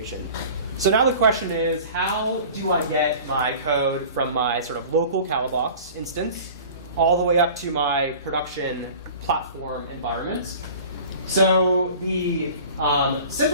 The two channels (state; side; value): inverted; both; correlation -0.42